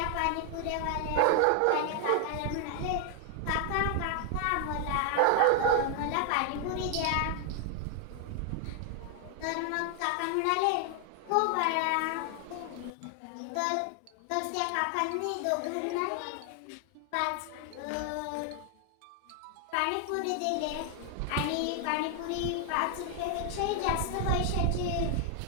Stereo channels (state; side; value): different; both; correlation 0.00